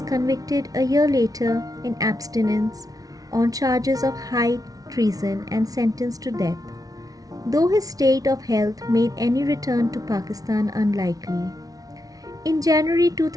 convicted a year later in abstinence on charges of high treason and sentenced to death, though his state of health made any return to Pakistan unlikely. In January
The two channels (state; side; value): late; left; 0.18 ms